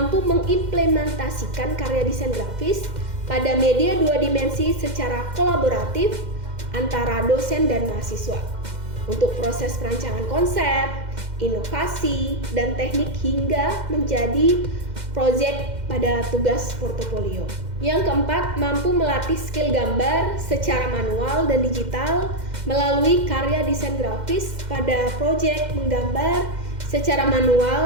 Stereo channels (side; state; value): left; late; 2.1 ms